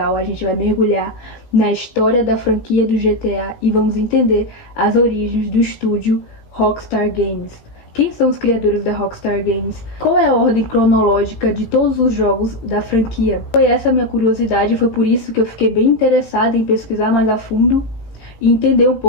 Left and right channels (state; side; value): late; right; 18 ms